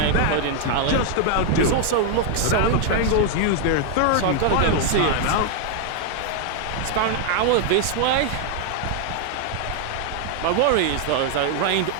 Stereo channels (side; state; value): both; different; correlation 0.00